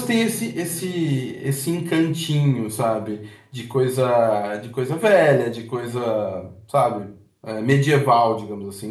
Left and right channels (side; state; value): both; identical; correlation 1.00